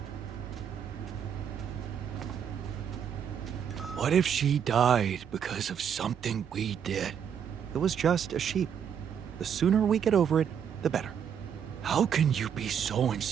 What if she died because of something we did? It was just a sheep. The sooner we get over it, the better. How can you be so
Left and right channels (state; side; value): quieter; left; 8.1 dB